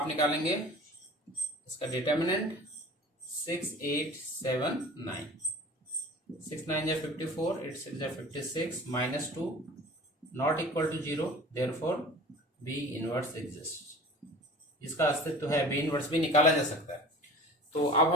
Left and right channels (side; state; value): both; normal; correlation 0.42